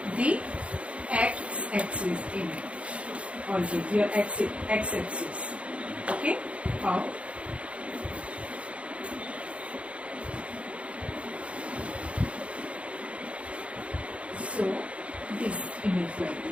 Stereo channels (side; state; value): left; late; 0.062 ms